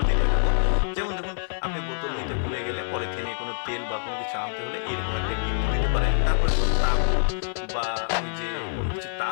দেখাবো। যেমন দেখুন, আপনি বোতল নিতে ভুলে গেলে পলিথিনে কোনো তেল বা কোনো কিছু আনতে হলে এরকম একটা গিট্টু দিতে পারেন। তারপরে তাবু বা ওই যে কোনো কিছু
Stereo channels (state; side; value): silent; right; 55 dB below the other